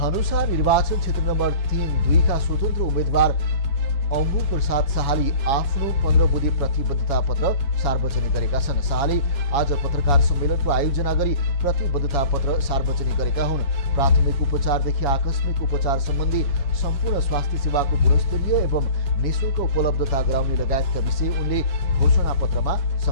निर्वाचन क्षेत्र नम्बर 3-2 का स्वतन्त्र उम्मेद्वार अम्बु प्रसाद शाहले आफ्नो 15 बुँदे प्रतिबद्धता पत्र सार्वजनिक गरेका छन्। शाहले आज पत्रकार सम्मेलनको आयोजना गरी प्रतिबद्धता पत्र सार्वजनिक गरेका हुन्। प्राथमिक उपचारदेखि आकस्मिक उपचार सम्बन्धी सम्पूर्ण स्वास्थ्य सेवाको गुणस्तरीय एवं निःशुल्क उपलब्धता गराउने लगायतका विषय उनले घोषणापत्रमा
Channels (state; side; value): late; right; 7.1 ms